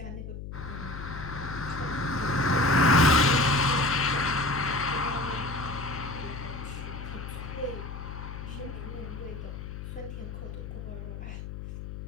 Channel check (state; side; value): noise; left; hum, 9 dB below the sound